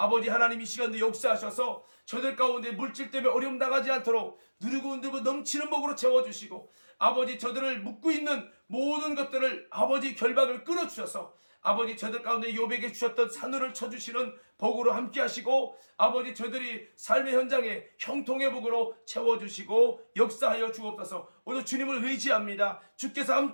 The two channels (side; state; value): both; inverted; correlation -1.00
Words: 하나님 이 시간도 역사하셔서 저들 가운데 물질 때문에 어려움 당하지 않도록 누르고 넘치는 복으로 채워주시고 아버지 저들을 묶고 있는 모든 것들을 아버지 결박을 끊어주셔서 아버지 저들 가운데 욥에게 주셨던 산울을 쳐주시는 복으로 함께 하시고 아버지 저들이 삶의 현장에 형통의 복으로 채워주시고 역사하여 주옵소서. 오늘 주님을 의지합니다. 주께서